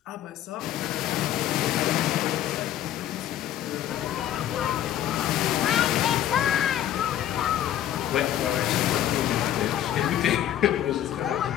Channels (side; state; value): right; quieter; 11.7 dB